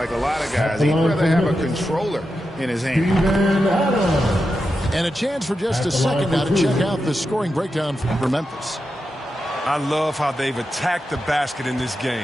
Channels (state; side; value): normal; both; correlation 0.89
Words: a lot of guys. He'd rather have a controller in his hand. And a chance for just a second now to check out the scoring breakdown for Memphis. I love how they've attacked the basket in this